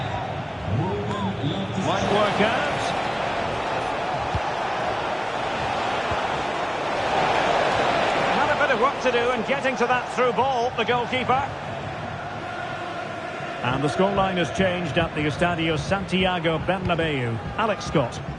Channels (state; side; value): identical; both; correlation 1.00